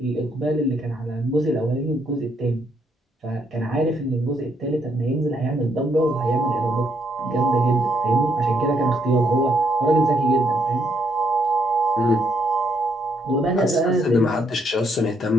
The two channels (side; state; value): both; normal; correlation 0.73